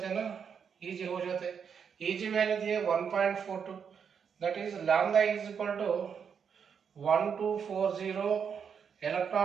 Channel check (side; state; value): left; quieter; 7.0 dB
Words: हैं ना, Eg हो जाते हैं, Eg वैल्यू दिए 1.42, that is lambda is equal to 1240